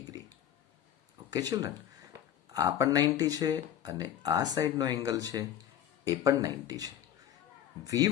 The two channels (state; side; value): quieter; right; 10.6 dB